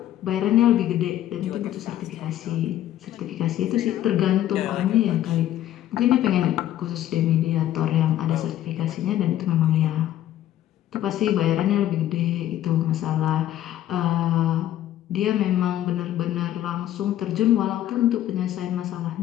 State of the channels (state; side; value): quieter; right; 12.5 dB